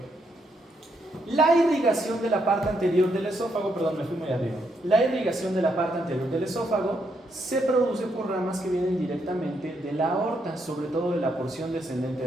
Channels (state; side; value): normal; both; correlation 0.77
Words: la irrigación de la parte anterior del esófago, perdón, me fui muy arriba. La irrigación de la parte anterior del esófago se produce por ramas que vienen directamente de la aorta, sobre todo de la porción descendente